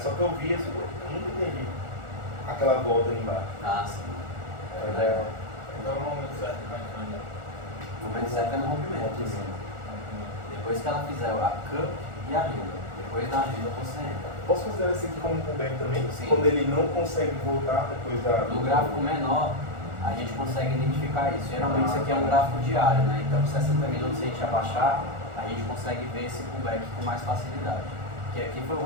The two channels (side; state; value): left; late; 1.4 ms